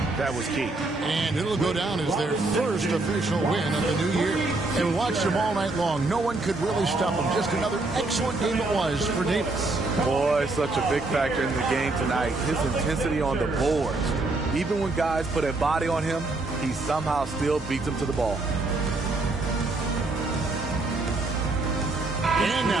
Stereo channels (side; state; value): left; quieter; 3.2 dB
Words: that was key. And it'll go down as their first official win of the new year. And watched them all night long. No one could really stop them. Just another excellent game it was for Davis. Boy, such a big factor in the game tonight. His intensity on the boards. Even when guys put a body on him, he somehow still beats them to the ball. And